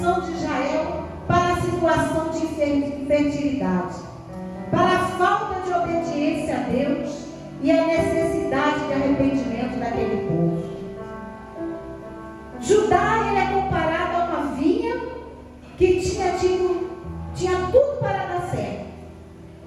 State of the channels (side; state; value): both; identical; correlation 1.00